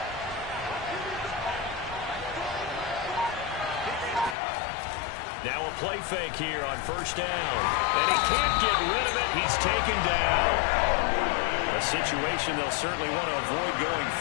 Now a play fake here on first down. And he can't get rid of it. He's taken down. A situation they'll certainly want to avoid going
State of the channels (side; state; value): right; drops out; at 4.4 s